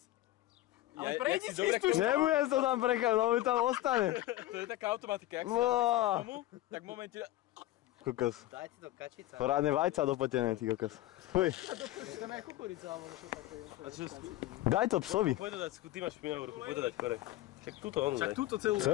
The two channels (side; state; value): right; quieter; 15.8 dB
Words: Ale prejdi si tú Nebudem to tam prekať, lebo mi tam ostane. To je taká automatika, jak si Wow. tomu, tak v momente... Kokos. Dajte to kačica. Porádne vajca dopotené, ty kokos. Fuj. Daj to psovi. Poď to dať, ty máš špinavú ruku, poď to dať kore. Však túto onu daj. Však túto celú.